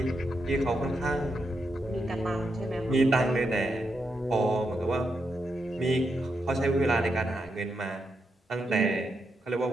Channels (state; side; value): normal; both; correlation 0.84